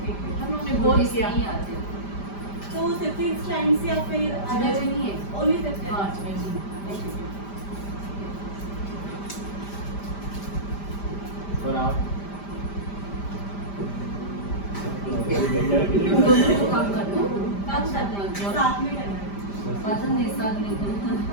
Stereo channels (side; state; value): right; late; 5.0 ms